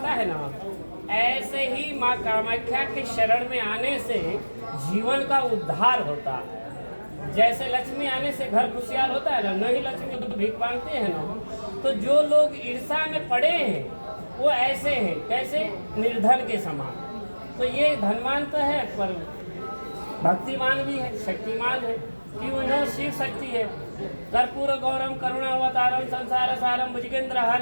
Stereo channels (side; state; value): both; inverted; correlation -1.00